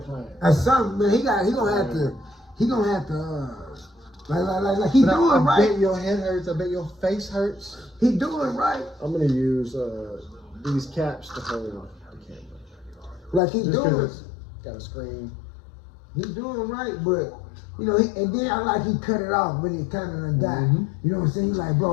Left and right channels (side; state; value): right; drops out; at 13.4 s